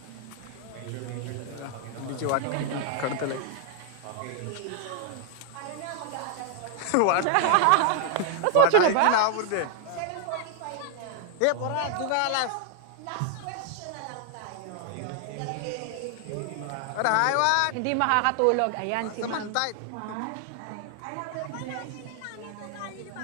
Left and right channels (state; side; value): different; both; correlation 0.00